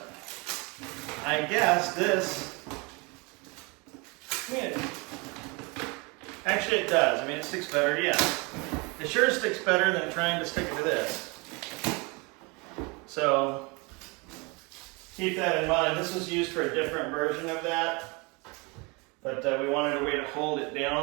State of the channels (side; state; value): left; quieter; 28.6 dB